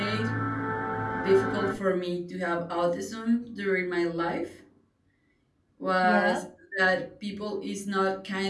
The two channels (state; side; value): identical; both; correlation 1.00